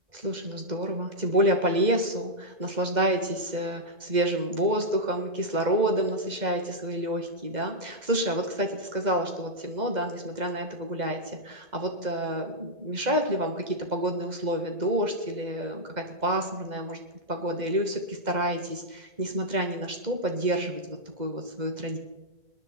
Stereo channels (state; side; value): late; left; 2.0 ms